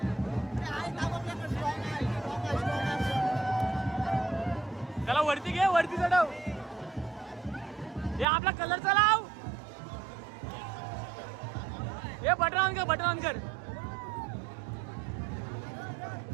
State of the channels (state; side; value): drops out; left; at 8.2 s